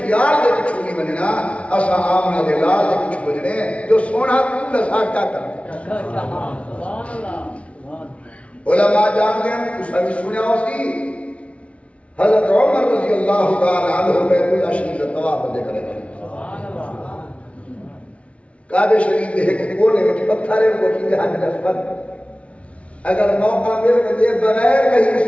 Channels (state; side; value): late; right; 0.063 ms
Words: دے کچھو نہیں بننا اسا آمنہ دے لال دے کچھو بننے جو سونا کون لسا کیا کرنے علماء جان دیں اس نے سنیا اسی حضرت عمر رضی اللہ تعالی عنہ بیت اللہ شریف طواف دے کرے کعبہ شریف دے کونے میں پتھر ہے وہ کی حج نسبت اگر موقع مل کے بغیر کہیں